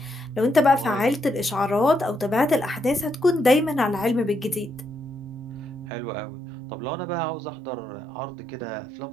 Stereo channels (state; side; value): drops out; left; at 5.9 s